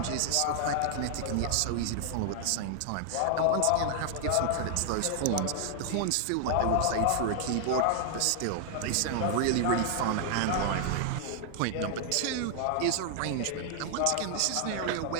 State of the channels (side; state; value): both; different; correlation 0.00